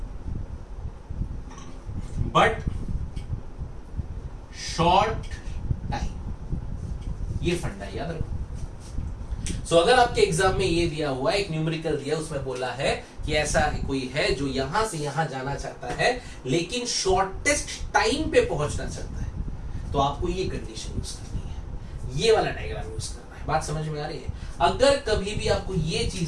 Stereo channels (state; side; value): identical; both; correlation 1.00